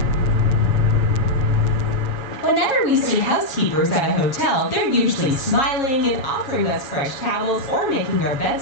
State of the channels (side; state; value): right; late; 7.3 ms